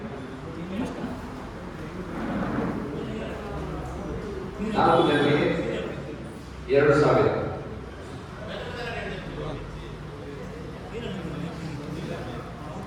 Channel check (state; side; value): identical; both; correlation 1.00